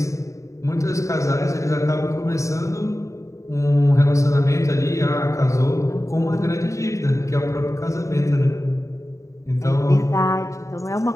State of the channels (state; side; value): late; right; 0.15 ms